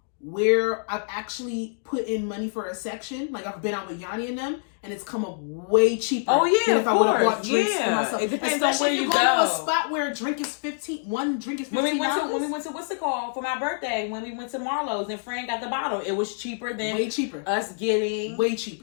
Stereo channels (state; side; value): silent; right; digital silence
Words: where I've actually put in money for a section. Like I've been out with Yanni and them, and it's come up way cheaper. Oh yeah, than if I would have bought drinks for myself. It depends Especially on where you go. to a spot where one drink is $15. When we went to what's it called for my birthday? When we went to Marlowe's and Fran got the bottle, it was cheaper than us getting way